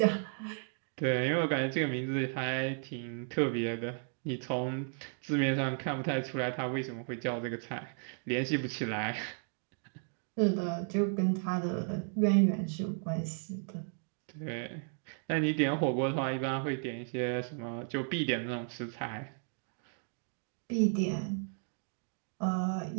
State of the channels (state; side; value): silent; left; 55 dB below the other